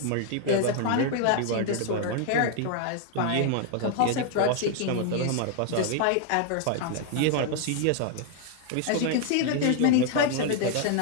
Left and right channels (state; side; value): different; both; correlation 0.00